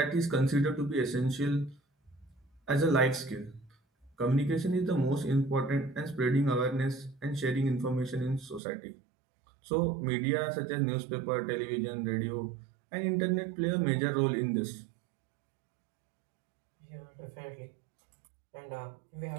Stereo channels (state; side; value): drops out; left; at 8.6 s